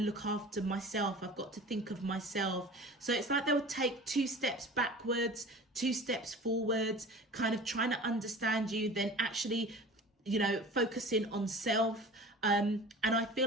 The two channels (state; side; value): normal; both; correlation 0.39